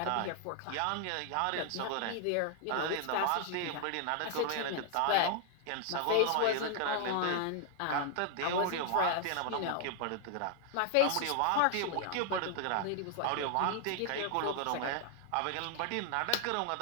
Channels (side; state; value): both; different; correlation 0.00